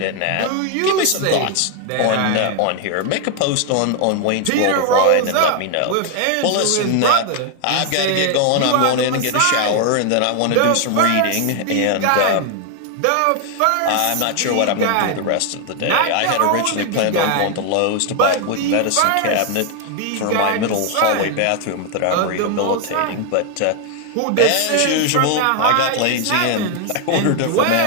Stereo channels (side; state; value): both; different; correlation 0.01